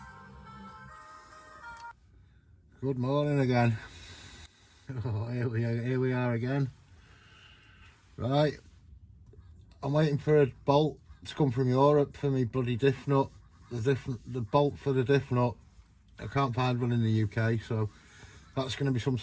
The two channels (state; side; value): identical; both; correlation 1.00